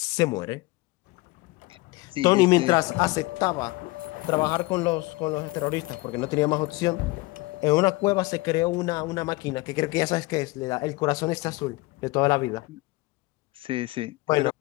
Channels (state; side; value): quieter; right; 22.0 dB